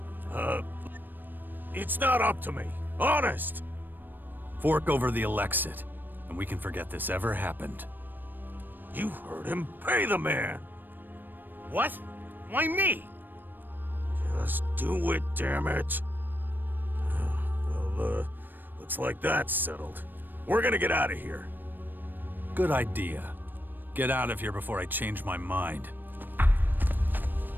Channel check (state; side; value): late; left; 0.092 ms